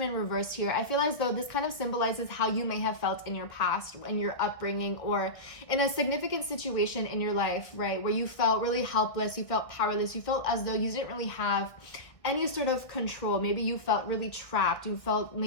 reversed here, I feel as though this kind of symbolizes how you may have felt in your past, in your upbringing, or in a significant situation in your life, right, where you felt really helpless, you felt powerless, you felt as though you didn't really have any sort of control. Maybe you felt really trapped, you felt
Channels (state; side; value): late; right; 1.5 ms